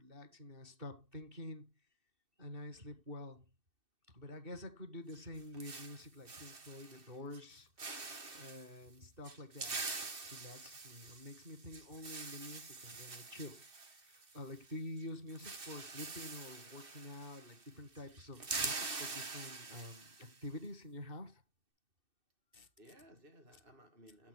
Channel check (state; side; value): late; left; 2.6 ms